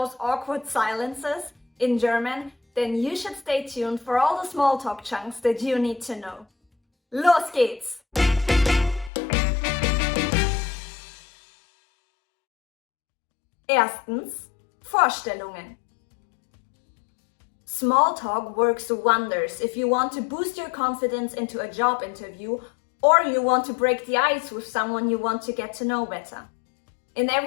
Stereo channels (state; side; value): drops out; right; at 9.1 s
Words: awkward silences in German, then you should stay tuned for all the small talk chunks that you need to know. Los geht's! Erstens, Vorstellungen. Small talk works wonders if you want to boost your confidence into a job interview or you want to break the ice with someone you want to get to know better. In